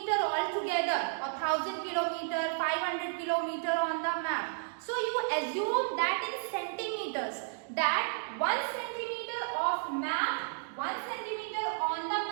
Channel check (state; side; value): silent; left; digital silence